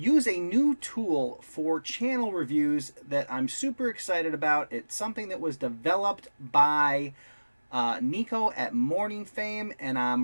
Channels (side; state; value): both; inverted; correlation -1.00